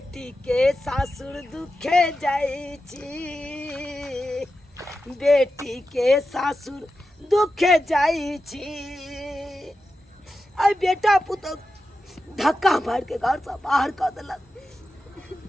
के सासुर दुखे जाई छी। बेटी के सासुर दुखे जाई छी। आई बेटा पुतौ धक्का मार के घर से बाहर कर दिलक।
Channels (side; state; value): both; normal; correlation 0.91